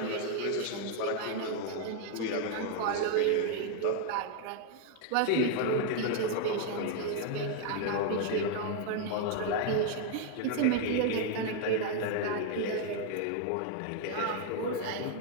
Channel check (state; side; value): different; both; correlation 0.00